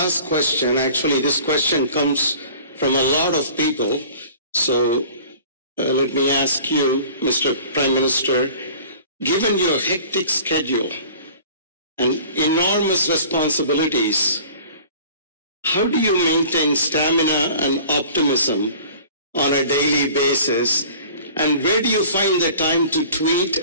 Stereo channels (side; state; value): both; inverted; correlation -0.46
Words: question, actually this question comes from a lot of people. So let me ask you, Mr. Prime Minister, given your hectic schedule and enormous responsibilities, how do you maintain stamina and optimism on a daily basis? And where do you find the time to tweet